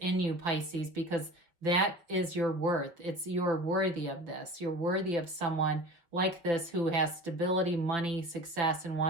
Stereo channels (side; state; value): left; late; 5.7 ms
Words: you, Pisces, because that is your worth. You're worthy of this. You're worthy of someone like this who has stability, money, success, and